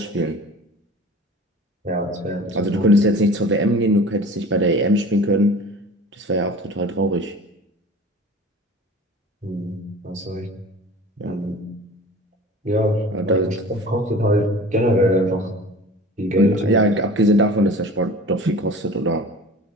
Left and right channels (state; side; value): normal; both; correlation 0.41